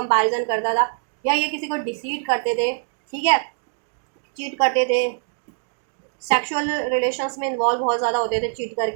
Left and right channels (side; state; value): left; silent; digital silence